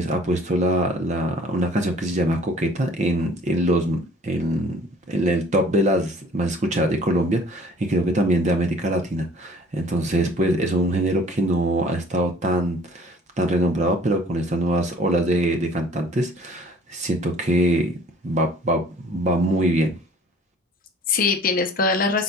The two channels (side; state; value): both; normal; correlation 0.52